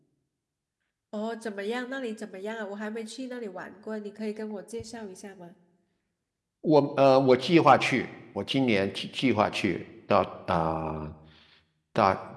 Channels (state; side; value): identical; both; correlation 1.00